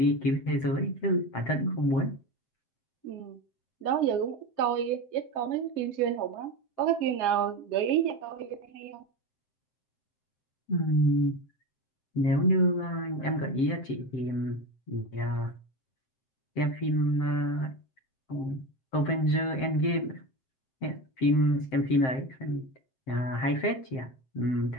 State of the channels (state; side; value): late; right; 7.6 ms